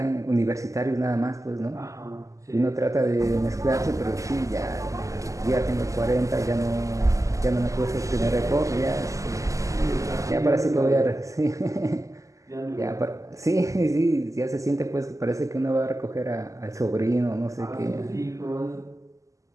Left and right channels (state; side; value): late; left; 0.16 ms